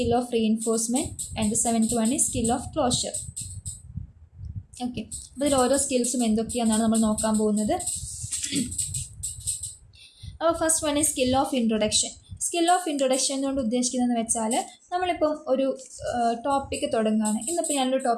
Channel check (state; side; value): identical; both; correlation 1.00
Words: of reinforcement. And the seventh one is skill of closure. Okay, അപ്പോൾ ഇതിൽ ഓരോ സ്കിൽസും എന്തൊക്കെയാണെന്നാണ് നമ്മൾ നോക്കാൻ പോകുന്നത്. അപ്പോൾ first one is skill of introduction. Skill of introduction കൊണ്ട് ഉദ്ദേശിക്കുന്നതെന്ന് വെച്ചാൽ നമ്മളിപ്പം ഒരു ടോപ്പിക്ക് തുടങ്ങുകയാണ്. ഇന്നിപ്പോൾ ഞാനൊരു